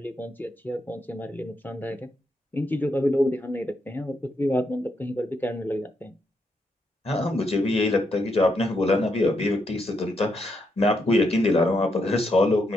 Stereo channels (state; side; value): normal; both; correlation 0.80